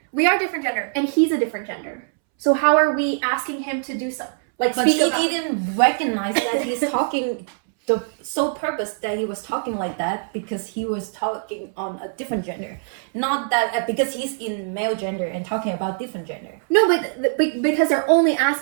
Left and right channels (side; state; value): left; silent; 64 dB below the other